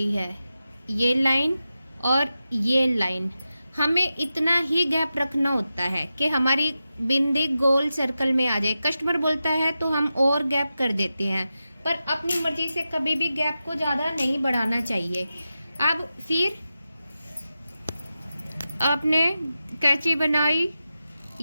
है, ये लाइन और ये लाइन, हमें इतना ही गैप रखना होता है कि हमारी बिंदी गोल सर्कल में आ जाए। कस्टमर बोलता है तो हम और गैप कर देते हैं, पर अपनी मर्जी से कभी भी गैप को ज़्यादा नहीं बढ़ाना चाहिए। अब फिर आपने कैंची बनाई,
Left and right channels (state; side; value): inverted; both; correlation -0.92